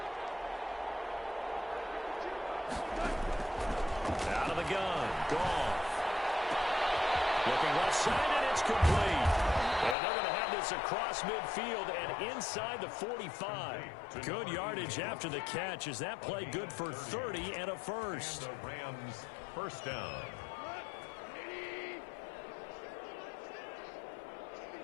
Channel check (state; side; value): drops out; right; at 10.0 s